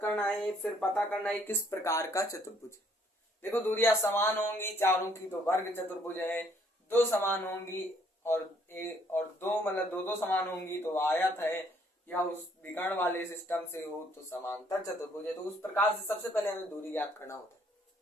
करना है, फिर पता करना है किस प्रकार का चतुर्भुज है। देखो, दूरियां समान होंगी चारों की तो वर्ग चतुर्भुज है, दो समान होंगी और दो मतलब दो समान होंगी तो आयत है, या उस विकर्ण वाले सिस्टम से हो तो समांतर चतुर्भुज है। तो उस प्रकार से सबसे पहले हमें दूरी ज्ञात करना होता है।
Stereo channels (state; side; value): normal; both; correlation 0.65